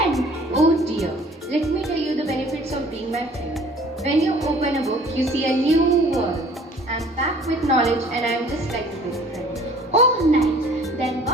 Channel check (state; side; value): normal; both; correlation 0.52